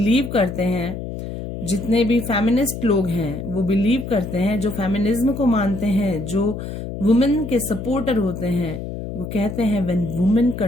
करते हैं, जितने भी फेमिनिस्ट लोग हैं वो बिलीव करते हैं, जो फेमिनिज्म को मानते हैं, जो वुमेन के सपोर्टर होते हैं, वो कहते हैं when women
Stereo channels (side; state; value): left; noise; hum, 7 dB below the sound